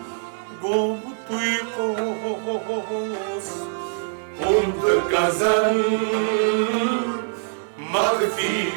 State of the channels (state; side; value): silent; left; digital silence